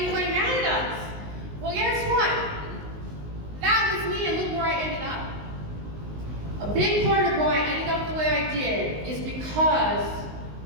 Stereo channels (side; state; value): left; late; 19 ms